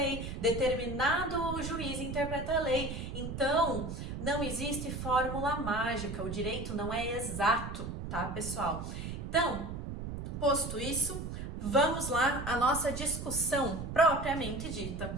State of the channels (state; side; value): noise; right; rumble, 6 dB below the sound